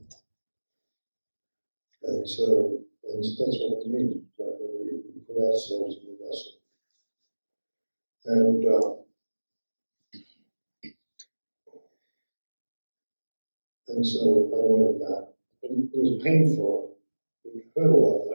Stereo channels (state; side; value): inverted; both; correlation -1.00